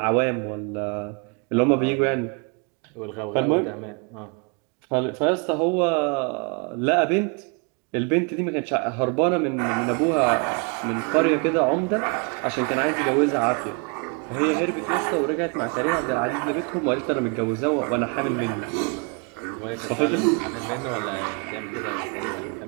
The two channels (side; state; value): left; quieter; 34.5 dB